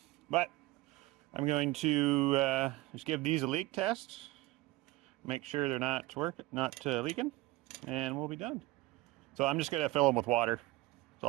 But I'm going to just give these a leak test. Make sure they're not leaking, and we'll be done. So I'm just gonna fill them with water. That's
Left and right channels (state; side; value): quieter; left; 19.3 dB